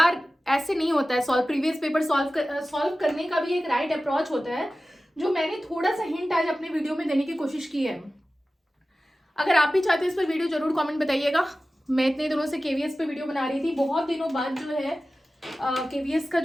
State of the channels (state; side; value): normal; both; correlation 0.95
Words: ऐसे नहीं होता है सॉल्व। प्रीवियस पेपर सॉल्व करने का भी एक राइट अप्रोच होता है, जो मैंने थोड़ा सा हिंट आज अपने वीडियो में देने की कोशिश की है। अगर आप भी चाहते हैं इस पर वीडियो जरूर कमेंट बताइएगा। मैं इतने दिनों से केवीएस पे वीडियो बना रही थी, बहुत दिनों बाद जो है KVS का